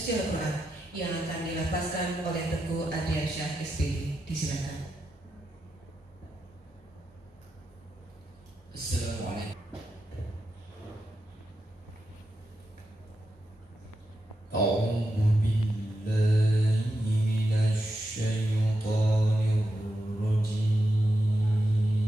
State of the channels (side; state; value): both; normal; correlation 0.87